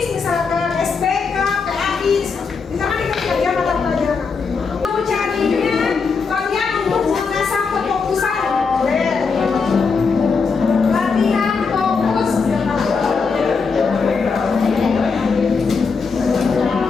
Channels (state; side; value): quieter; right; 5.1 dB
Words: misalkan SPK, PAI. Di sana diketik aja mata pelajaran. Mau carinya kalian untuk mengasah kefokusan. Boleh. Latihan fokus.